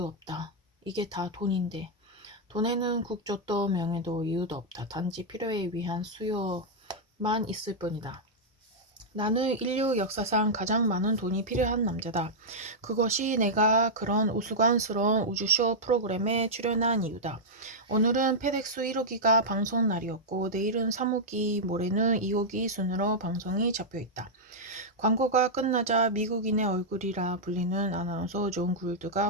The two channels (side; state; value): both; normal; correlation -0.07